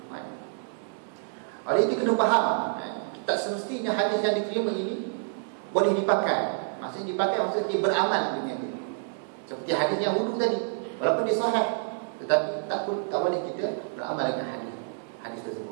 Oleh itu kena faham, tak semestinya hadis yang diterima ini boleh dipakai. Maksudnya dipakai maksudnya beramal dengan dia. Seperti hadis yang wudu tadi, walaupun dia sahih, tetapi tak boleh kita beramal dengan hadis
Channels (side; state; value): left; silent; 59 dB below the other